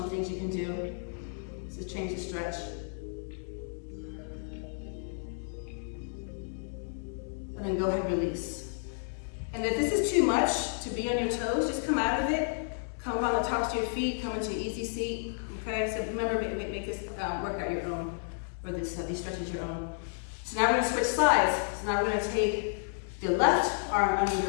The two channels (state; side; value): silent; right; digital silence